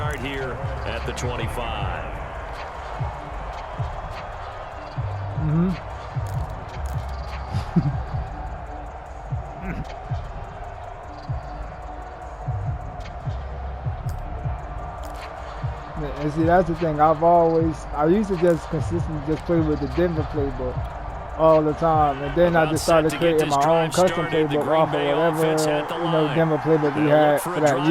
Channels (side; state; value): both; identical; correlation 1.00